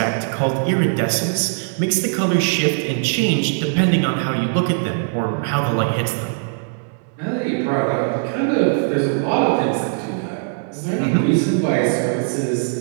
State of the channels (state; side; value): silent; left; digital silence